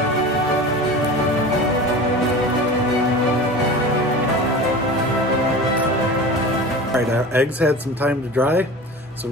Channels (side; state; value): both; normal; correlation 0.34